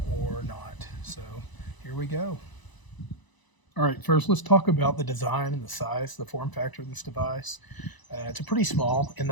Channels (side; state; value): right; late; 1.0 ms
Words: or not. So here we go. All right, first let's talk about the design and the size, the form factor of this device. It's a pretty small in